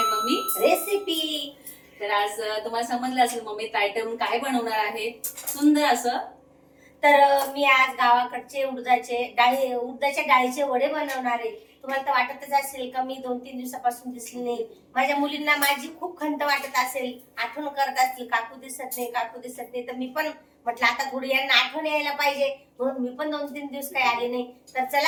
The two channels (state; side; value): identical; both; correlation 1.00